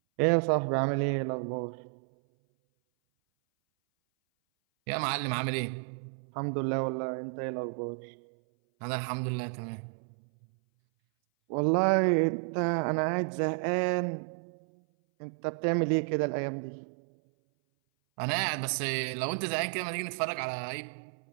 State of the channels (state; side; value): silent; left; 57 dB below the other